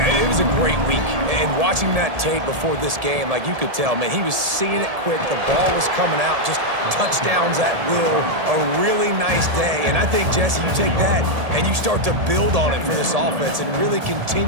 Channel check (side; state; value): left; late; 1.7 ms